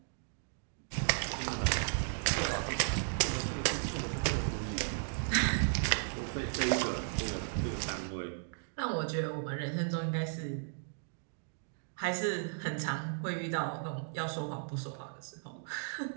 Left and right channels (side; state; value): left; silent; digital silence